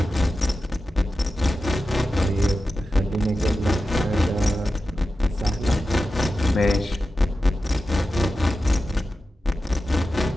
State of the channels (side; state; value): both; normal; correlation 0.92